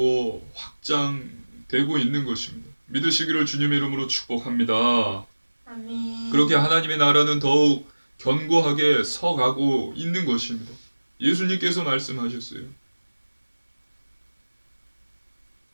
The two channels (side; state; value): both; inverted; correlation -1.00